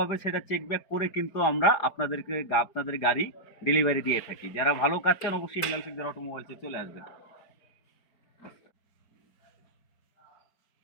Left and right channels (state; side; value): late; right; 4.9 ms